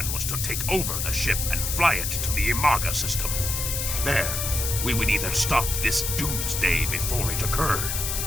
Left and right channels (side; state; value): left; noise; hiss, 2 dB below the sound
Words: was to take over the ship and fly it to the Imaga system. There, we would either stop this doomsday before it occurred,